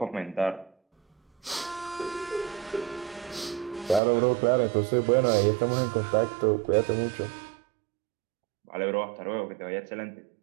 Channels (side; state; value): left; drops out; at 4.0 s